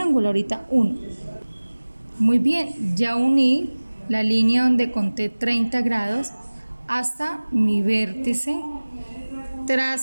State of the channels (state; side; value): inverted; both; correlation -1.00